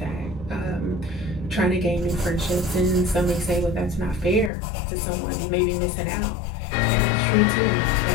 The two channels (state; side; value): drops out; right; at 4.5 s